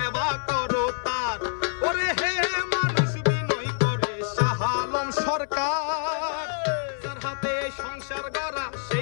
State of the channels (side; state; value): right; silent; 61 dB below the other